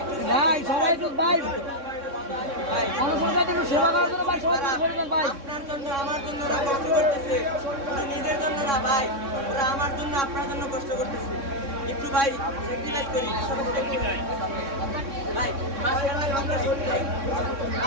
ভাই সবাই একটু ভাই জনসংখ্যা একটু সেবা করার জন্য ভাই সবাই করবেন ভাই। আপনার জন্য আমার জন্য ওরা কষ্ট করতেছে, নিজের জন্য না ভাই, ওরা আমার জন্য আপনার জন্য কষ্ট করতেছে। একটু ভাই স্যাক্রিফাইস করি ভাই, মাশাআল্লাহ কামড়াই ভাই,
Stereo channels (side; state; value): left; late; 3.6 ms